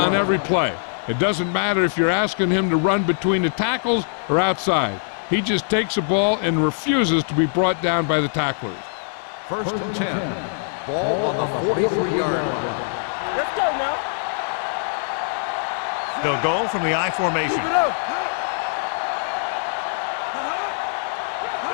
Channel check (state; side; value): silent; right; digital silence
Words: every play. It doesn't matter if you're asking him to run between the tackles or outside. He just takes the ball and refuses to be brought down by the tacklers. First and 10. Ball on the 43-yard line. Let's go now. They'll go from the I formation. Let's go. Let's